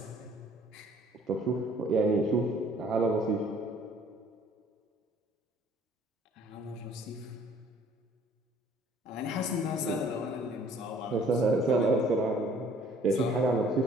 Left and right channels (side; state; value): both; normal; correlation 0.57